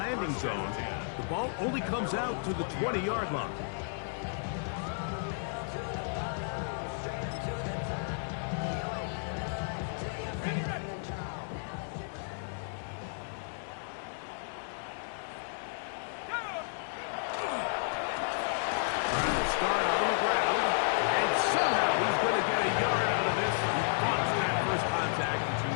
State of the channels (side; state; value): right; silent; digital silence